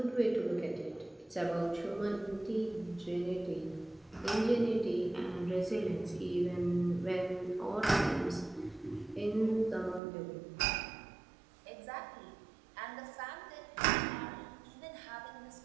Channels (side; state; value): left; drops out; at 10.0 s